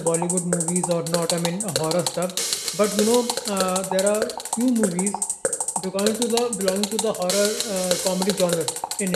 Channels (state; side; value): identical; both; correlation 1.00